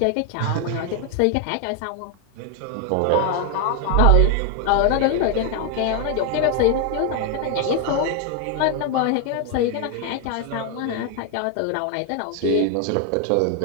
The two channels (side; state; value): both; different; correlation 0.00